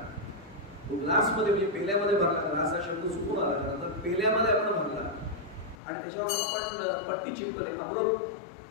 ग्लास मध्ये म्हणजे पेल्यामध्ये भरला, ग्लास हा शब्द चुकून आला तर पेल्यामध्ये आपण भरला आणि त्याच्यावर आपण पट्टी चिपकले अमृत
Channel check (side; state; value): right; drops out; at 5.8 s